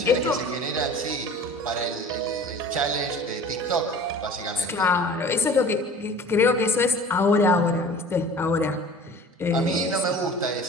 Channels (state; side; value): normal; both; correlation 0.43